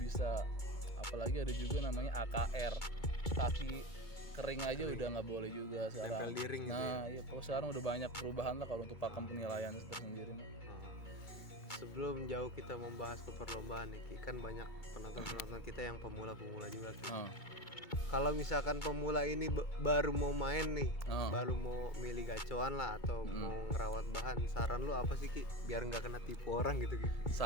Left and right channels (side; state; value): right; late; 2.2 ms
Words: bisa. Apalagi ada juga namanya AKR, kaki kering aja udah nggak boleh juga sekarang. Tempel di ring gitu. Nah iya, kalau sekarang udah banyak perubahan lah kalau untuk pakem penilaian tersendiri. Sebelum jauh kita membahas ke perlombaan nih, Ki, kan banyak penonton kita yang pemula-pemula juga, Ki. Kalau misalkan pemula ini baru mau main nih, baru mau milih gacoan lah atau mau ngerawat bahan, saran lu apa sih, Ki, biar nggak kena tipu orang gitu, Ki?